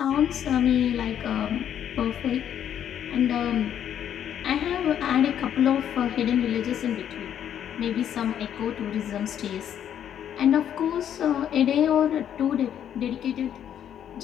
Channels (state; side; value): quieter; right; 9.7 dB